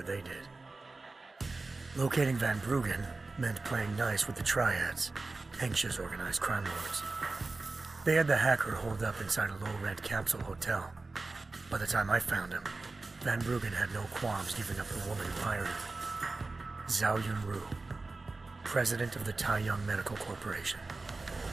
they did. Locating Van Bruggen meant playing nice with the Triads, Hengsha's organized crime lords. They had the hacker holed up inside a low-rent capsule hotel. By the time I found him, Van Bruggen had no qualms giving up the woman who hired him. Zhao Yunru, president of the Taiyang Medical Corporation.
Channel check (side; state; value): left; quieter; 3.5 dB